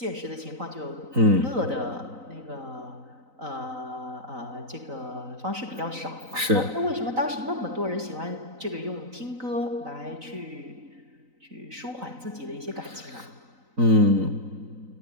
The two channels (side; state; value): left; late; 3.9 ms